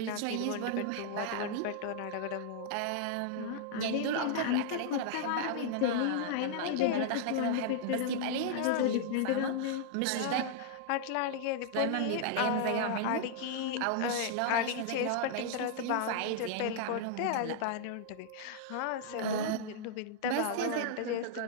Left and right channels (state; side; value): different; both; correlation -0.01